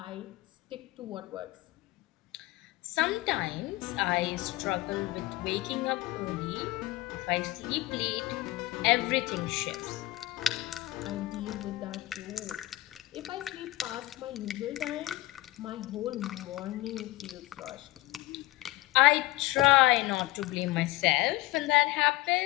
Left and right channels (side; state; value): right; quieter; 18.2 dB